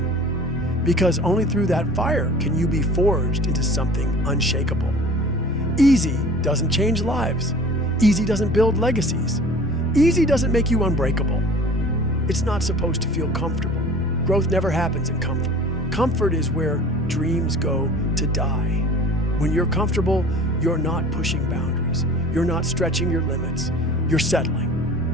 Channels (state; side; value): normal; both; correlation 0.44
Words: because only through that fire can you be forged into something unshakable. Easy doesn't change lives. Easy doesn't build legacies. Easy doesn't make you unbreakable. It's not supposed to feel comfortable. Growth never happens in comfort. Comfort is where dreams go to die. When you're comfortable, you're not pushing boundaries. You're not stretching your limits. You're